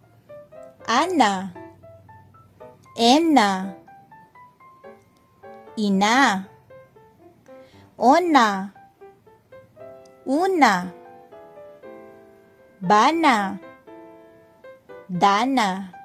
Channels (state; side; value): identical; both; correlation 1.00